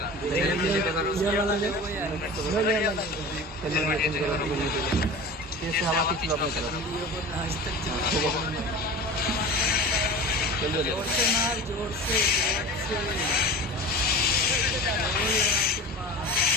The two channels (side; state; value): both; normal; correlation 0.35